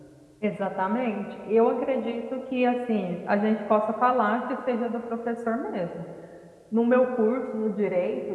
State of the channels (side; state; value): both; identical; correlation 1.00